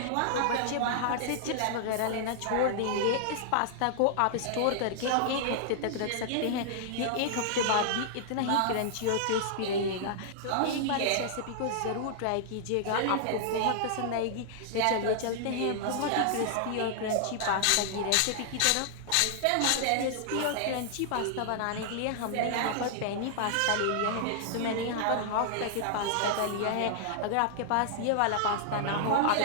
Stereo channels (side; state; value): both; different; correlation -0.01